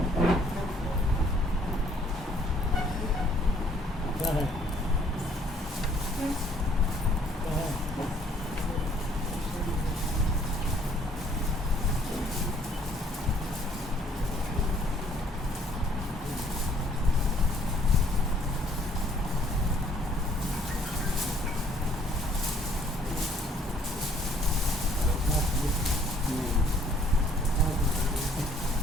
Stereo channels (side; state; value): both; normal; correlation 0.62